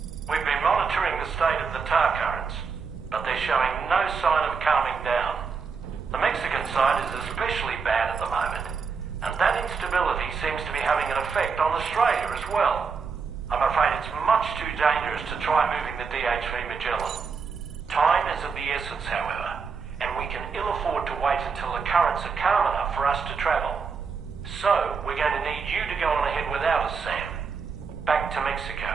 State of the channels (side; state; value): left; quieter; 5.4 dB